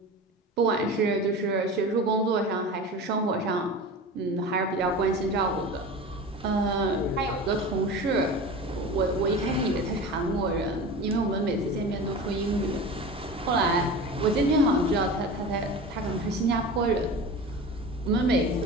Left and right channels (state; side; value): normal; both; correlation 0.32